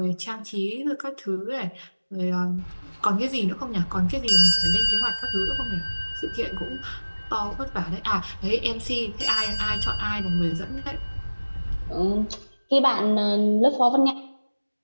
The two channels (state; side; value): inverted; both; correlation -1.00